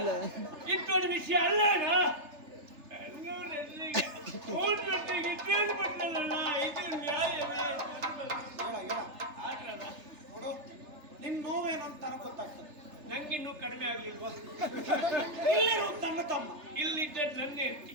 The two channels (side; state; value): left; late; 3.3 ms